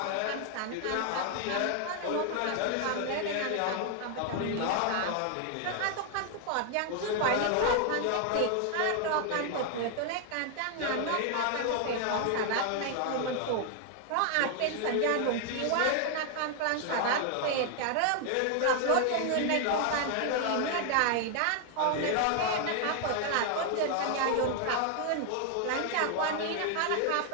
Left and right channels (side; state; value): both; different; correlation 0.00